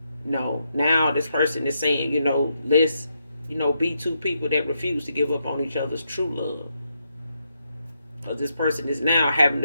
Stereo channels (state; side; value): inverted; both; correlation -0.81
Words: No, now this person is saying, let's, be two people that refuse to give up on each other's true love. Because this person is now having